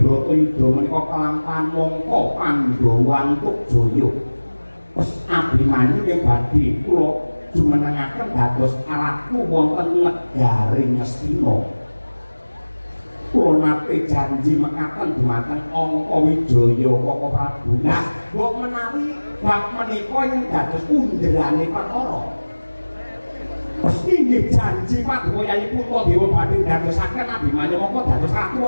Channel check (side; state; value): both; inverted; correlation -1.00